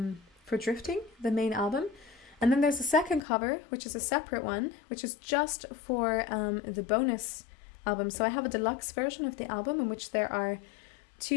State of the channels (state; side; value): drops out; right; at 3.2 s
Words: Drifting, the main album. And then there's a second cover, which is a separate one, which is just for the bonus album. So I have a deluxe version of the album in which there are